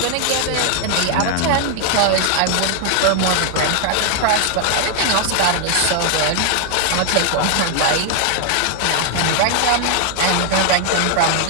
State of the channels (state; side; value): different; both; correlation 0.00